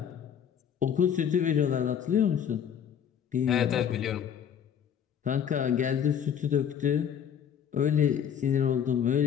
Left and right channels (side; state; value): right; quieter; 8.5 dB